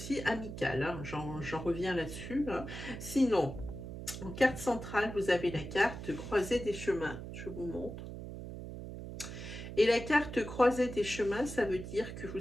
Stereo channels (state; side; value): noise; right; hum, 9 dB below the sound